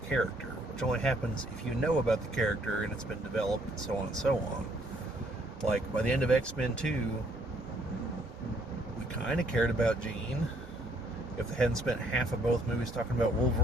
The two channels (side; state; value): both; normal; correlation 0.66